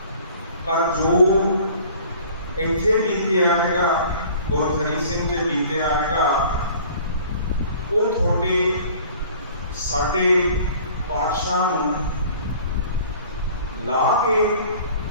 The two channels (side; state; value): both; inverted; correlation -0.49